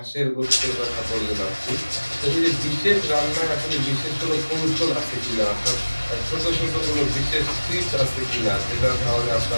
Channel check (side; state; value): both; inverted; correlation -1.00